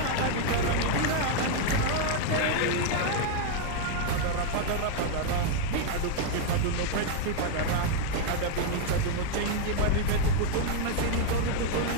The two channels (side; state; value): both; different; correlation 0.00